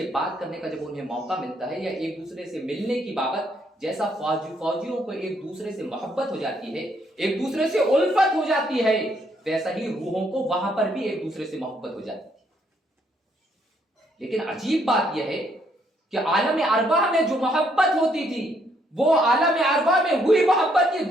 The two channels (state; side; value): normal; both; correlation 0.71